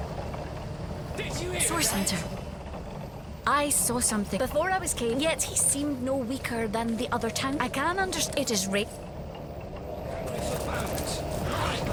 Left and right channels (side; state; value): both; identical; correlation 1.00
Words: Source Hunter. I saw something before I was came, yet he seemed no weaker than the other town. I can understand it is right.